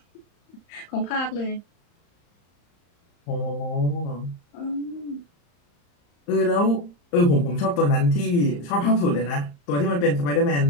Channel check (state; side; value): late; right; 35 ms